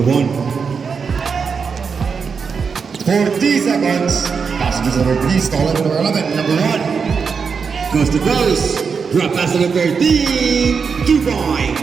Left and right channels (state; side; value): quieter; left; 5.7 dB